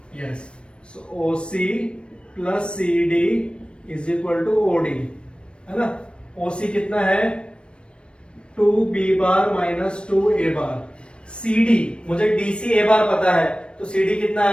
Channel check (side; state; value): right; late; 0.057 ms